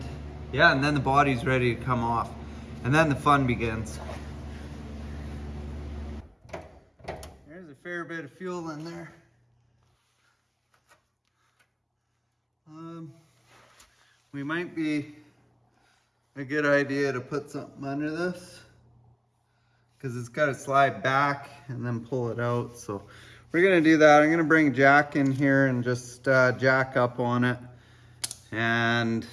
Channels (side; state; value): both; identical; correlation 1.00